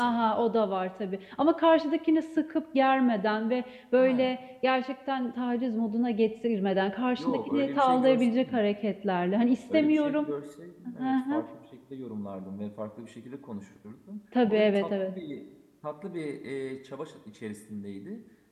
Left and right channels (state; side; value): identical; both; correlation 1.00